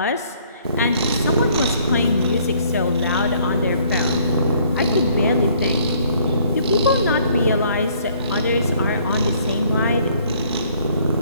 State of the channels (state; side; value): inverted; both; correlation -0.62